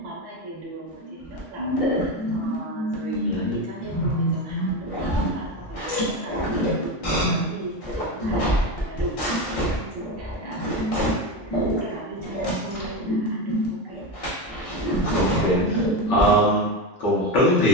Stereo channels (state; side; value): normal; both; correlation 0.18